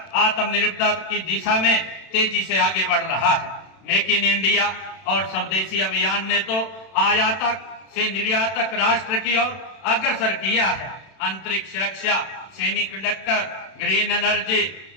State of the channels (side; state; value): right; late; 31 ms